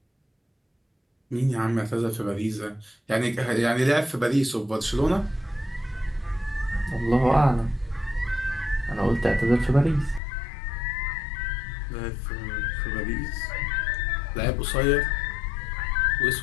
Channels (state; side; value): drops out; right; at 10.2 s